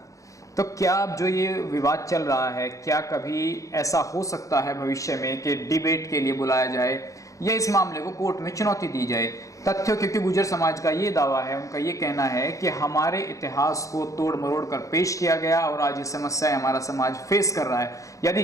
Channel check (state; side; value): late; right; 0.16 ms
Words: तो क्या अब जो ये विवाद चल रहा है, क्या कभी ऐसा हो सकता है भविष्य में कि डिबेट के लिए बुलाया जाए या इस मामले को कोर्ट में चुनौती दी जाए? तथ्य, क्योंकि गुर्जर समाज का ये दावा है, उनका ये कहना है कि हमारे इतिहास को तोड़ मरोड़ कर पेश किया गया और आज ये समस्याएं हमारा समाज फेस कर रहा है। यदि